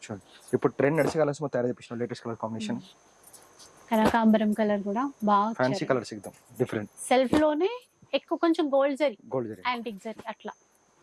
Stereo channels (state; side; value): identical; both; correlation 1.00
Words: చూడండి ఇప్పుడు ట్రెండ్ నడిచే కలర్స్ మొత్తం తయారు చేపించిన లేటెస్ట్ కలర్ కాంబినేషన్. కనకాంబరం కలర్ కూడా బాగా ఫ్యాన్సీ కలర్స్ ఎక్దమ్ డిఫరెంట్. సెల్ఫ్ లోనే ఎక్కువ కొంచెం గోల్డ్ జరీ, యాంటిక్ జరీ అట్లా.